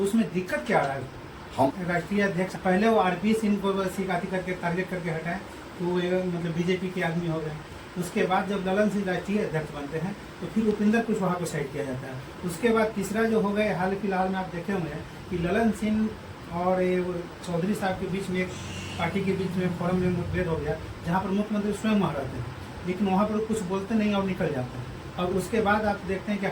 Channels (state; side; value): identical; both; correlation 1.00